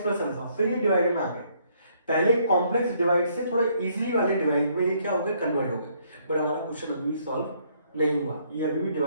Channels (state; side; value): inverted; both; correlation -0.68